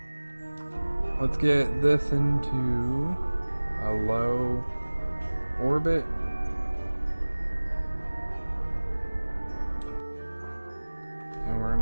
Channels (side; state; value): both; inverted; correlation -1.00